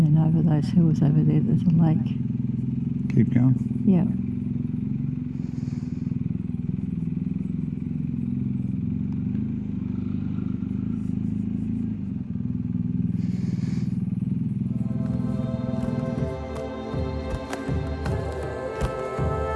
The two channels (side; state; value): both; identical; correlation 1.00